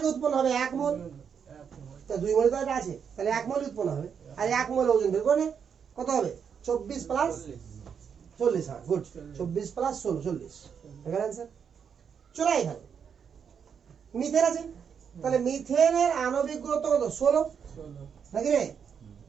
উৎপন্ন হবে 1 মোল, তা 2 মোল তো এটা আছে, তাহলে 1 মোল উৎপন্ন হবে। আর 1 মোল ওজন বের করে নে, কত হবে, 24 প্লাস 40। হ্যাঁ গুড, 24 প্লাস 16 40 এখানে অ্যান্সার। চলে এখানে মিথেন আছে, তাহলে মিথেনের আণবিক গুরুত্ব কত, 16 নাকি রে?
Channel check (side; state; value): left; quieter; 7.1 dB